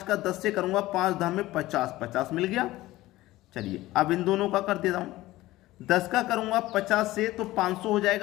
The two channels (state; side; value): quieter; right; 17.2 dB